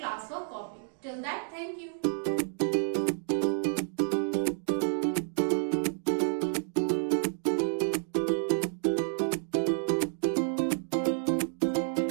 copy. Till that, thank you.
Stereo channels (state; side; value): silent; left; 58 dB below the other